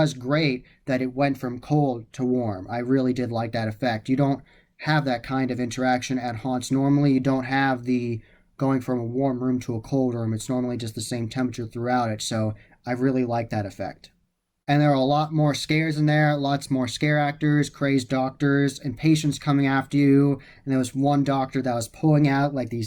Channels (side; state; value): both; identical; correlation 1.00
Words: great that it went from cold to warm. I really did like that effect. You don't have that kind of interaction at haunts normally. You don't have the going from a warm room to a cold room. It's normally just the same temperature throughout it. So I really like that effect. And there are a lot more scares in there, lots more scare actors, crazed doctors, and patients coming after you. And there was one doctor that was pulling out like